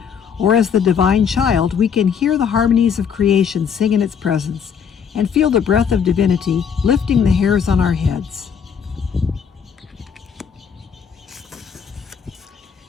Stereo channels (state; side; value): quieter; right; 7.1 dB